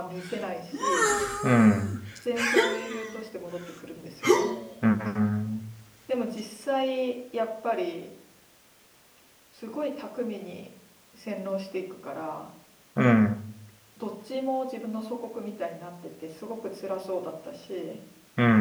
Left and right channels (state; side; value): identical; both; correlation 1.00